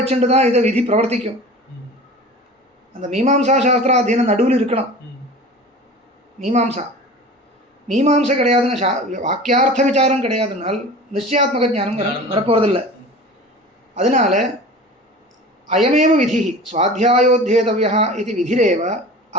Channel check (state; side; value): normal; both; correlation 0.38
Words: தான் இதை விதி பிரவர்த்திக்கும். அந்த மீமாம்சா அத்தியனம் நடுவில் இருக்கணும். மீமாம்சை கிடையாதுன்னா வாக்கியார்த்த விசாரம் கிடையாதுனால் நிச்சயாத்மக ஞானம் வரப்போவதில்லை. அதனால அயமேவ விதி சுவாத்தியாயோத்யேதவ்யः इति विधिरेव